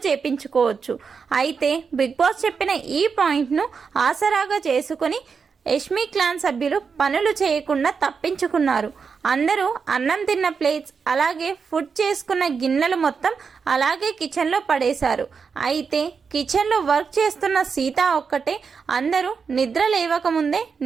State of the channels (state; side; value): quieter; left; 5.7 dB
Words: చేపించుకోవచ్చు. అయితే బిగ్ బాస్ చెప్పిన ఈ పాయింట్ను ఆసరాగా చేసుకుని యష్మి క్లాన్ సభ్యులు పనులు చేయకుండా తప్పించుకున్నారు. అందరూ అన్నం తిన్న ప్లేట్స్ అలాగే ఫుడ్ చేసుకున్న గిన్నెలు మొత్తం అలాగే కిచెన్లో పడేశారు. అయితే కిచెన్లో వర్క్ చేస్తున్న సీత ఒక్కటే అందరూ నిద్ర లేవకముందే